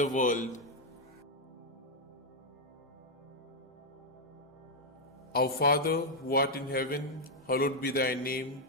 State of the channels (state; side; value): normal; both; correlation 0.00